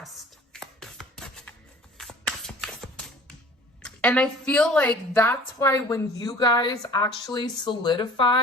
And I feel like that's why when you guys actually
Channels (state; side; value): normal; both; correlation 0.47